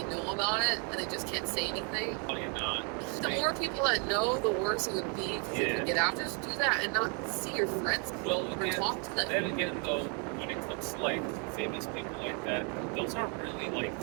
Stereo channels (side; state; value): left; quieter; 37.7 dB